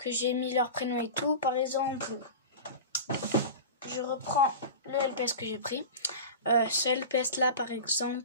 j'ai mis leur prénom et tout. Par exemple, je reprends le LPS que j'ai pris. Ce LPS là par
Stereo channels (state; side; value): inverted; both; correlation -0.30